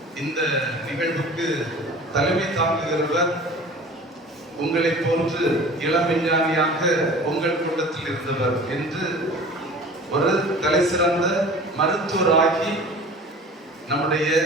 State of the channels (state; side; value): normal; both; correlation 0.42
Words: இந்த நிகழ்வுக்கு தலைமை தாங்குகிறவர் உங்களை போன்று இளம் விஞ்ஞானியாக உங்கள் கூட்டத்தில் இருந்தவர் என்று ஒரு தலை சிறந்த மருத்துவராகி நம்முடைய